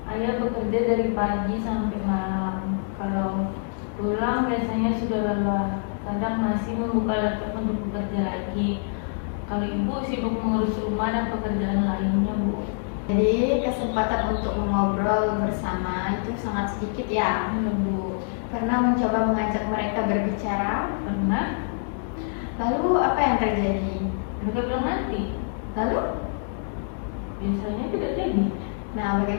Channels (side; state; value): right; silent; digital silence